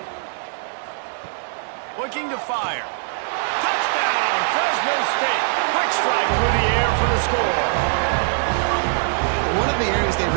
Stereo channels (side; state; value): left; silent; digital silence